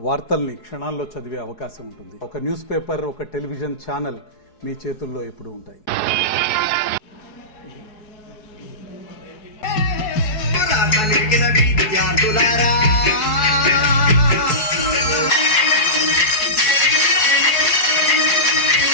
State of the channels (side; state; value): right; late; 4.6 ms